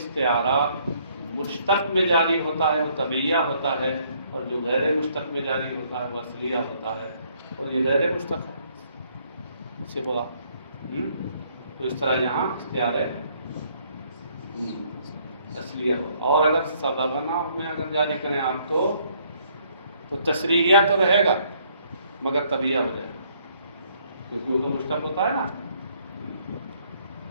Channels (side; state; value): both; inverted; correlation -0.66